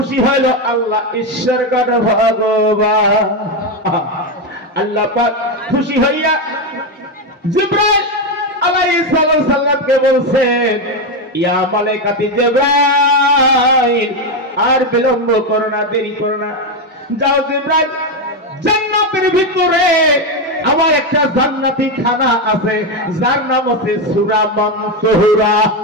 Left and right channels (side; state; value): both; normal; correlation 0.09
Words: হলো আল্লাহ ঈশ্বর গড ভগবান আল্লাহ পাক খুশি হইয়া জিবরাইল আলাইহিস সালামকে বলছেন ইয়া মালাইকাতি জিবরাইল আর বিলম্ব করো না দেরি করো না যাও জিবরাইল জান্নাতের ভিতরে আমার একটা জান্নাতি খানা আছে যার নাম আছে সূরা মানসুরা